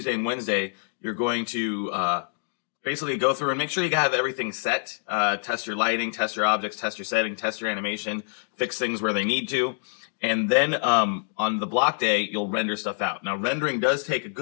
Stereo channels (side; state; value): right; silent; digital silence